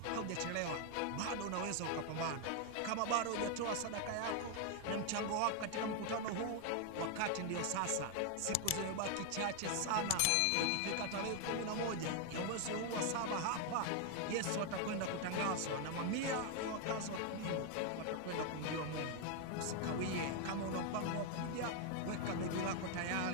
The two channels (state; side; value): different; both; correlation 0.01